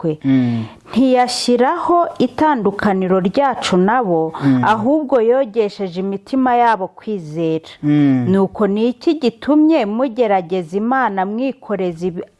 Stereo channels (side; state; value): both; identical; correlation 1.00